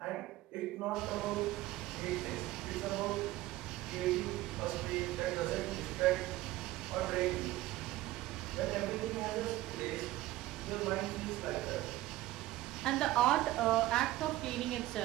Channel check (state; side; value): quieter; left; 16.5 dB